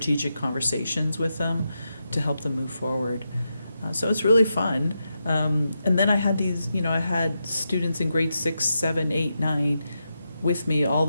conversations with them to help them move forward. So it's really fun. And then I had I had students in grade 6, 7, 8, 9 with me all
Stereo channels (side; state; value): both; inverted; correlation -0.86